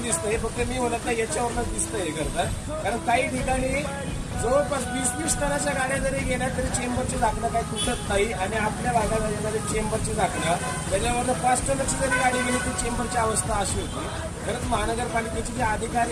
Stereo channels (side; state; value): both; identical; correlation 1.00